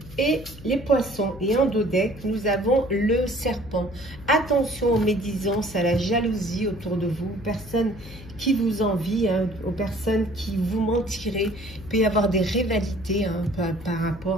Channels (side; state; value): left; noise; hum, 16 dB below the sound